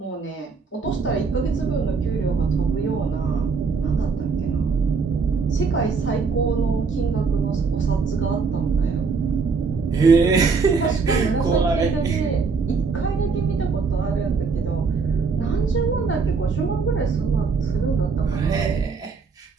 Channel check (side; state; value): left; quieter; 4.9 dB